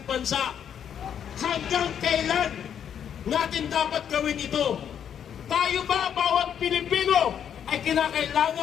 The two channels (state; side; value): quieter; right; 8.7 dB